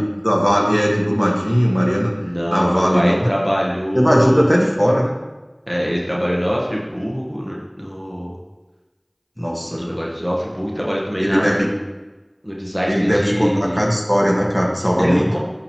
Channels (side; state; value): both; identical; correlation 1.00